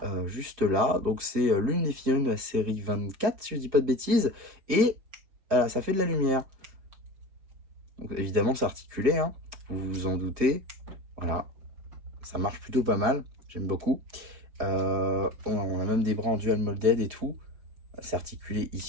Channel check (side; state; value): left; late; 4.9 ms